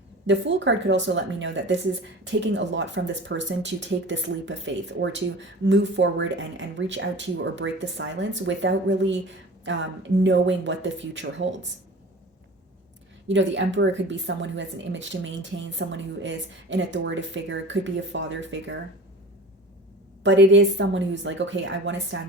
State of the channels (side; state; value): both; normal; correlation 0.38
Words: The Fool card could also let me know that this is taking a lot from this person to take this leap of faith, or to move forward and reach out to you or break the silence without really knowing what the future holds. The Emperor could be someone who has an image to maintain, someone who is an authoritative figure, could be a father figure. But it is someone who's like, okay, I want to